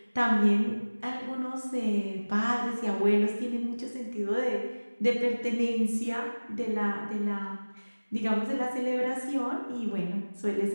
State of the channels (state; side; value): inverted; both; correlation -1.00